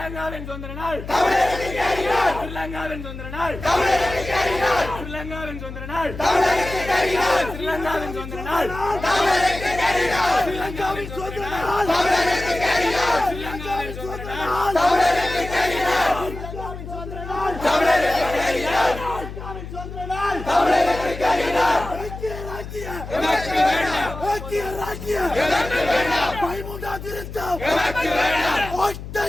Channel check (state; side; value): noise; left; hum, 10 dB below the sound